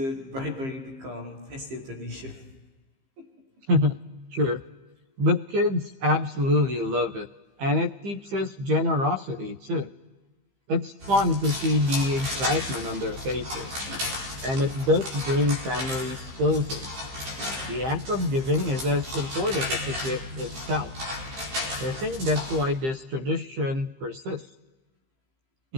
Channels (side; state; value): left; late; 15 ms